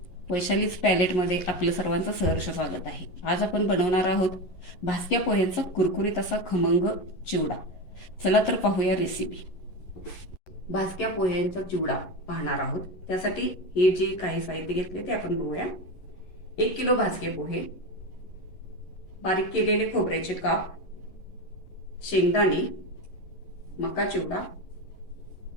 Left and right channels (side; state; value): right; late; 11 ms